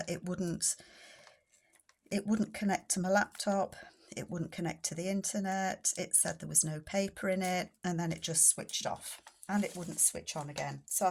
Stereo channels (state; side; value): identical; both; correlation 1.00